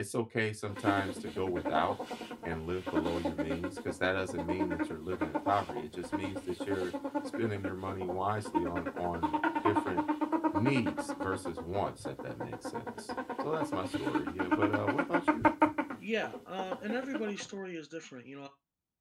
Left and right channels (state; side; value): identical; both; correlation 1.00